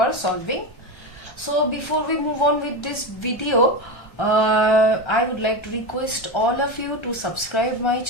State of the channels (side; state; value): right; late; 1.3 ms